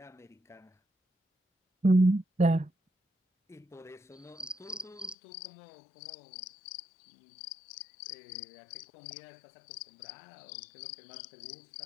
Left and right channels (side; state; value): right; drops out; at 5.2 s